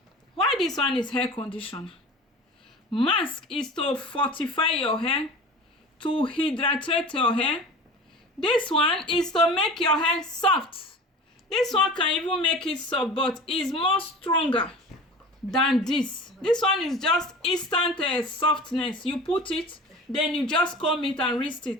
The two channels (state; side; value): normal; both; correlation 0.37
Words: Why this one is hair conditioner? Mask is to fortify your hair, to hydrate your hair. This one is to make your hair soft. This one can even make it soft, but it's more stronger than this. This one is just instant softness. You put it, then you just comb it and wrist